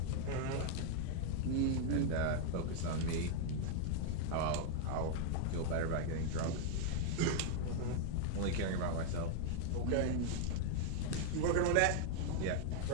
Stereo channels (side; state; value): both; different; correlation 0.00